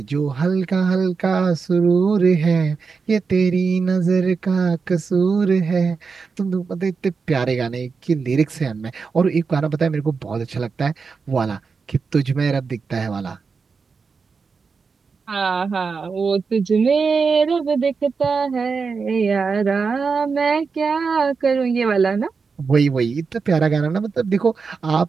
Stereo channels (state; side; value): quieter; left; 5.1 dB